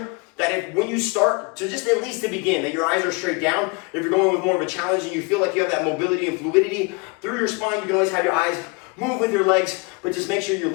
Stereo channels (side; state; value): right; quieter; 29.4 dB